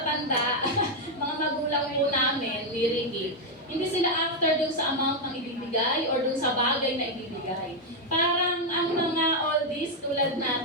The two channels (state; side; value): normal; both; correlation 0.01